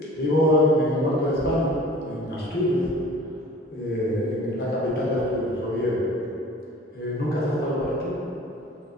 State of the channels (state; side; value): normal; both; correlation 0.46